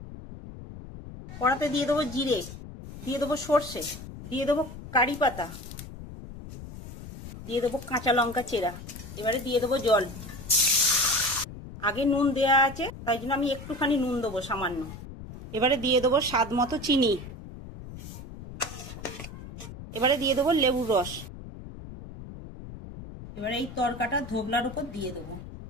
কড়াতে দিয়ে দেবো জিরে, দিয়ে দেবো সর্ষে, দিয়ে দেবো কারি পাতা, দিয়ে দেবো কাঁচা লঙ্কা চেরা। এবারে দিয়ে দেবো জল। আগে নুন দেয়া আছে, তাই জন্য আমি একটুখানি নুন দেবো সামান্য। এবারে দিয়ে দেবো স্বাদ মতো চিনি। এবারে দিয়ে দেবো লেবুর রস। এবারে এই তড়কাটা ধোগলার উপর দিয়ে দেবো।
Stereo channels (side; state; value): left; noise; rumble, 13 dB below the sound